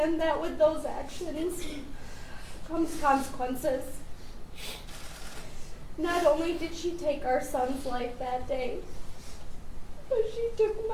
that with those actions comes consequences. Not only did she take our son's life that day, but she took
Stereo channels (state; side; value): identical; both; correlation 1.00